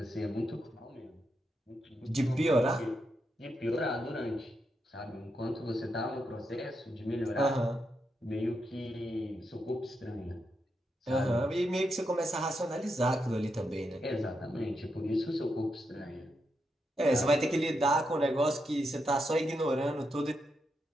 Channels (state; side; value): normal; both; correlation 0.83